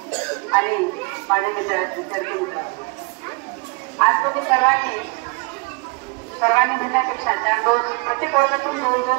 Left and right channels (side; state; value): left; quieter; 30.1 dB